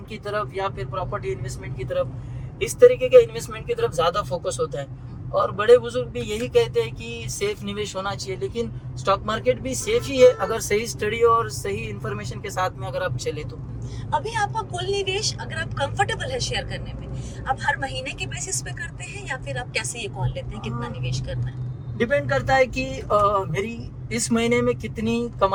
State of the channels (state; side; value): identical; both; correlation 1.00